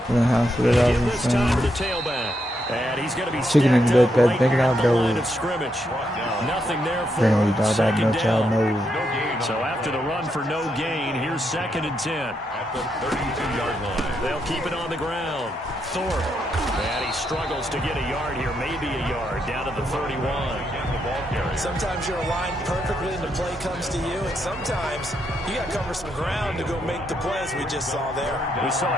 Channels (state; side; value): normal; both; correlation 0.80